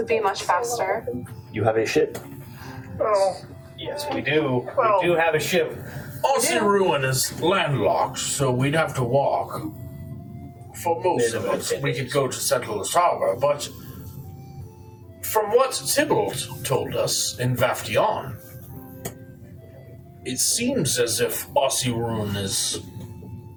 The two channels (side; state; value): both; identical; correlation 1.00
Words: be much faster. You have a ship. Oh, Yes, we do. Well- We do have a ship. Ossirune is landlocked, so we'd have to walk. For most of it, we could go to Settler's Harbor, but from what Tybalt told us in Vaftion, it seems as if Ossirune is